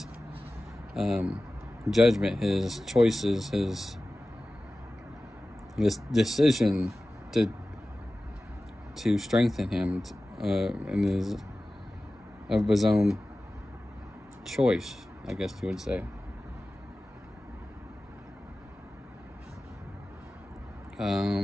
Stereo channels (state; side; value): normal; both; correlation 0.96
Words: judgment, his choices, his decision to strengthen him in his own choice, I guess you would say.